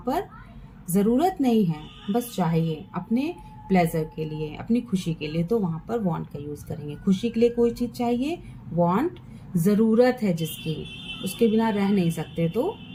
जरूरत नहीं है, बस चाहिए अपने प्लेजर के लिए, अपनी खुशी के लिए, तो वहां पर वांट का यूज करेंगे। खुशी के लिए कोई चीज चाहिए, वांट। जरूरत है जिसकी, उसके बिना रह नहीं सकते, तो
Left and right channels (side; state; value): both; identical; correlation 1.00